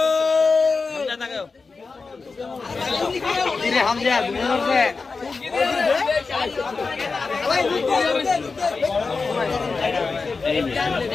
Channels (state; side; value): quieter; right; 4.3 dB